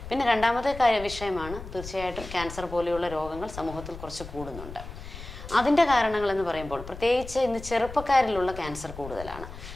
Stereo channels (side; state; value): left; noise; rumble, 13 dB below the sound